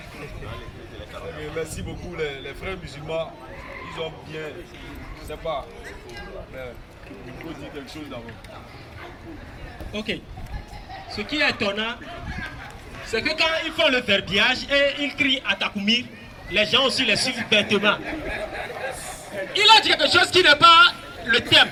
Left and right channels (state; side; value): identical; both; correlation 1.00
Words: Merci beaucoup les frères musulmans. Ils ont bien, je sais pas, mais il faut dire quelque chose d'abord. Ok. Ce qui est étonnant, c'est que quand ils font le verbiage et ils crient à Takoumir, les gens aussi les suivent bêtement. Il a dit quelque chose qui n'est pas le thème,